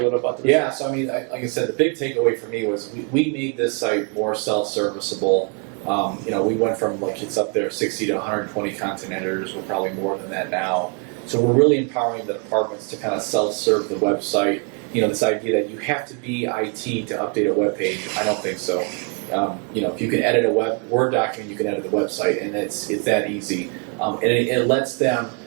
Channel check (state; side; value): quieter; left; 36.5 dB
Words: little about this? Yeah, so I mean, like I said, the big takeaway for me was we made this site more self-serviceable. We went from it's up there 60 to 120 content editors. We're probably more than that now. So we're really empowering the departments to kind of self-serve the website. This idea that you have to be IT to update a web page, I don't think so. If you can edit a Word document, you can edit the website, and it's that easy. And it lets them